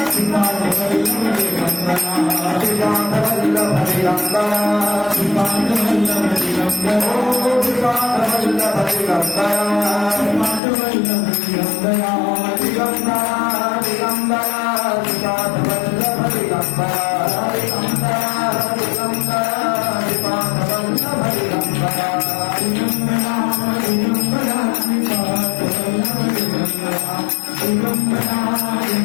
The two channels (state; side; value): drops out; right; at 10.6 s